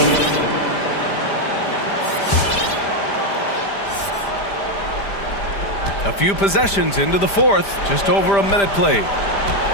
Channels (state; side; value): late; right; 5.0 ms